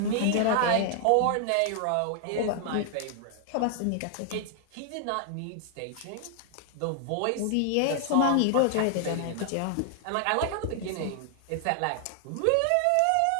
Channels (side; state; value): both; different; correlation 0.00